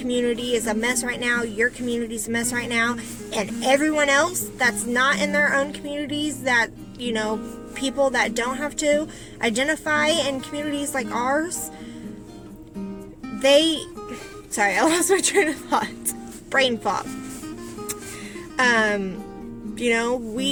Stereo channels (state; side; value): identical; both; correlation 1.00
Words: is a mess right now, your community's a mess right now, and everyone else that's not in their own communities, that, you know, people that don't have to identify in communities like ours, sorry, I lost my train of thought. Brain fog. You know,